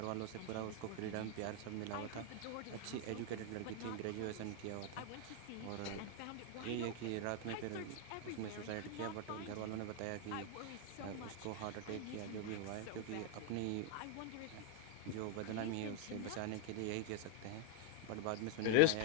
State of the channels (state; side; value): different; both; correlation 0.01